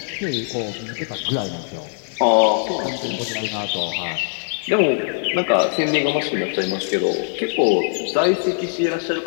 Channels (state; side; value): silent; right; 65 dB below the other